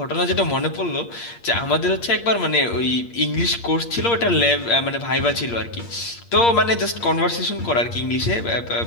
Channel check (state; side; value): late; right; 8.6 ms